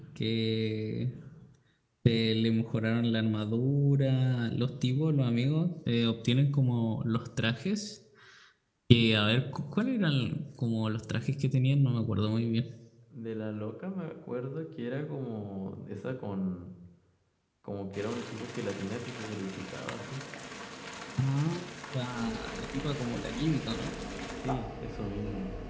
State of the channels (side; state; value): both; identical; correlation 1.00